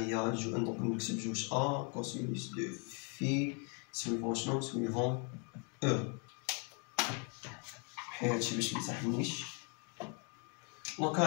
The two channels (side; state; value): right; quieter; 36.9 dB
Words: دونك نكتب جوج ا كوسينوس دو في سويفون شنو سويفون او. حيت هادشي باش ميسحنيش. دونك